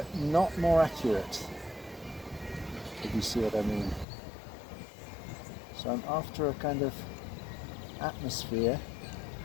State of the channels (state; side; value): drops out; right; at 4.0 s